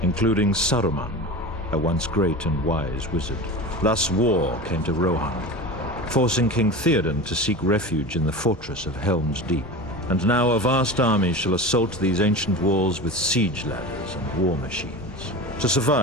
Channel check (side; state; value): both; normal; correlation 0.30